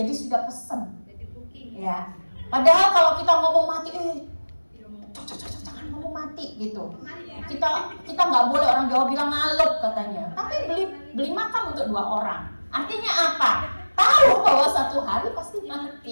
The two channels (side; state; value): both; inverted; correlation -1.00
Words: sudah pesen ya. Padahal kalau kita ngomong mati, jangan ngomong mati gitu. Kita nggak boleh, orang Jawa bilang ngalup katanya. Tapi beli makam untuk 2 orang. Artinya apa? Tahu bahwa satu hari pasti